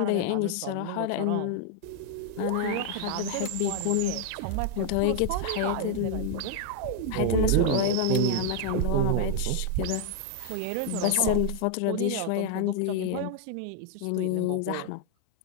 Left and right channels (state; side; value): different; both; correlation 0.00